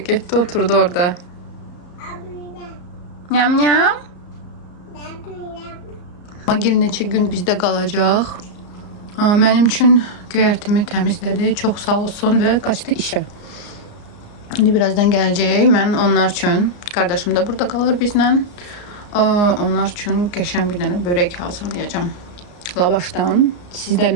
getdi oturdu orada. Nyam nyam. Magil neçə gün bizdə qalacaq. Mənim üçün göyərtimi təmizlədi, çox sağ olsun və qaçdı işə. İndi birazdan gələcək, mən onlar üçün, qardaşım da burada qalır bizlə. Onlar üçün qəşən bir dənə börək hazırlayacağım. Lavaşdan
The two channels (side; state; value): right; late; 34 ms